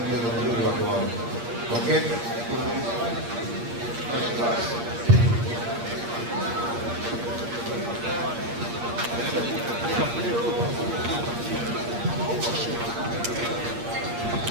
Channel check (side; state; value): left; late; 8.6 ms